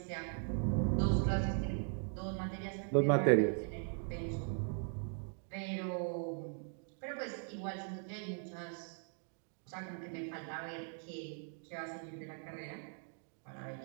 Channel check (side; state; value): left; silent; 51 dB below the other